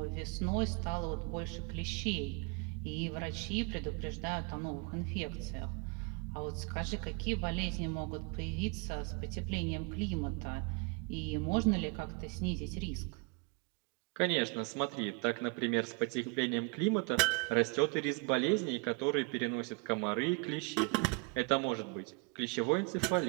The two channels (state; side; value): quieter; left; 32.2 dB